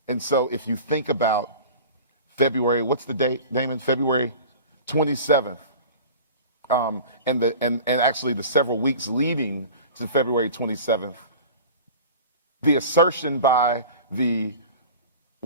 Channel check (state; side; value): inverted; both; correlation -0.38